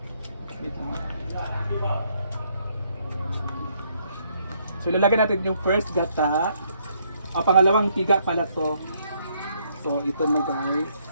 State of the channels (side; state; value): both; inverted; correlation -0.71